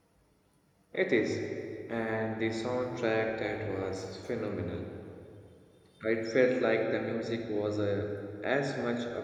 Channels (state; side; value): identical; both; correlation 1.00